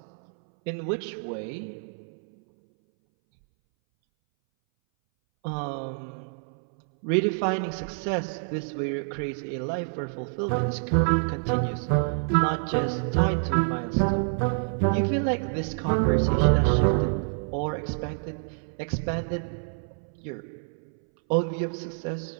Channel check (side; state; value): left; silent; 60 dB below the other